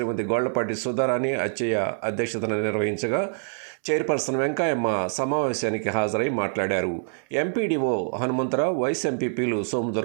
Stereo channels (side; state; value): left; silent; 62 dB below the other